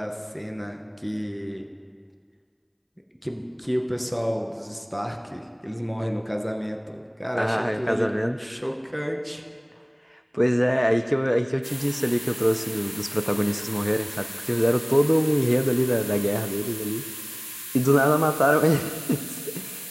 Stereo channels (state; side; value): identical; both; correlation 1.00